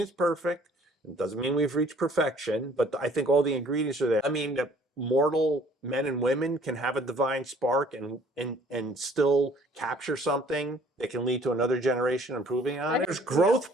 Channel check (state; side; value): normal; both; correlation 0.56